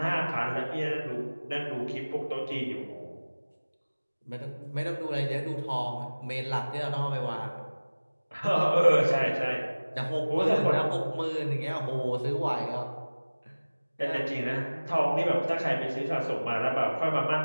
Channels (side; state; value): both; inverted; correlation -1.00